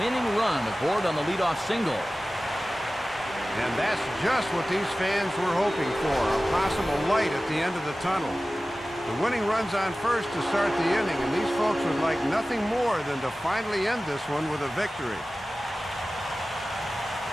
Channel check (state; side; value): normal; both; correlation 0.96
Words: winning run aboard on the leadoff single. And that's just what these fans were hoping for, a possible light at the end of the tunnel. The winning run's on first to start the inning, and these folks would like nothing more than to finally end this one with a victory.